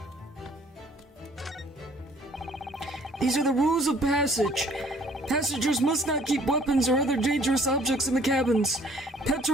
These are the rules of passage. Passengers must not keep weapons or other dangerous objects in the cabins. Pets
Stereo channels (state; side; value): normal; both; correlation 0.56